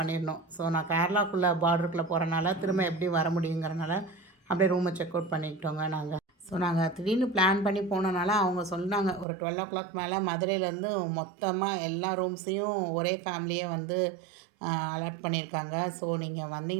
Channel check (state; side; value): drops out; left; at 9.2 s